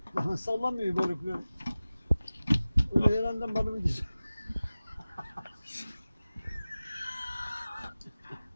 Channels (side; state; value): both; inverted; correlation -0.97